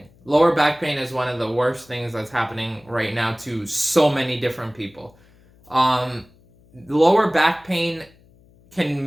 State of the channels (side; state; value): left; noise; hum, 29 dB below the sound